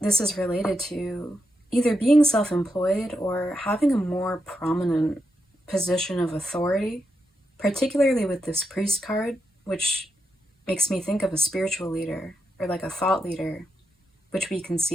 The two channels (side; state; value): both; normal; correlation 0.84